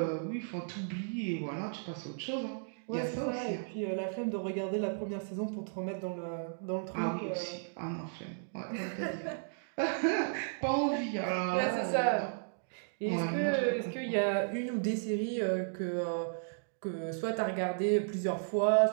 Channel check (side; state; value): left; silent; digital silence